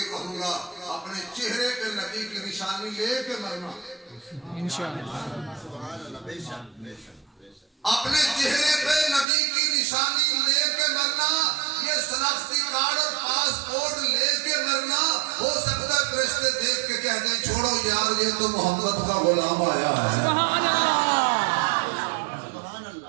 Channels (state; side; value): drops out; left; at 9.2 s